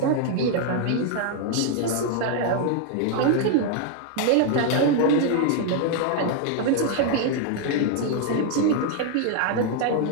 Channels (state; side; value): different; both; correlation 0.00